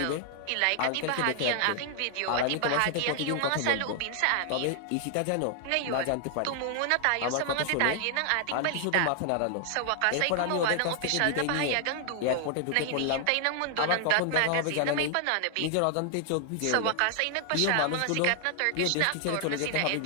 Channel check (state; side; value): different; both; correlation 0.00